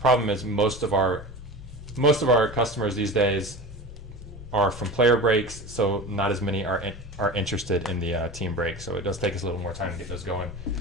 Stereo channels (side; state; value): both; normal; correlation 0.32